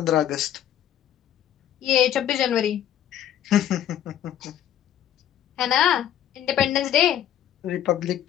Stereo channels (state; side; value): quieter; right; 10.9 dB